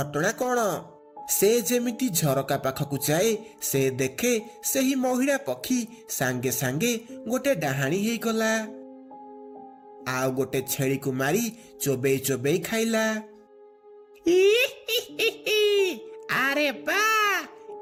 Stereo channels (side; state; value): both; identical; correlation 1.00